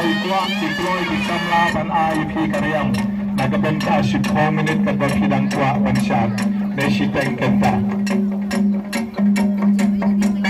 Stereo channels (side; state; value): both; identical; correlation 1.00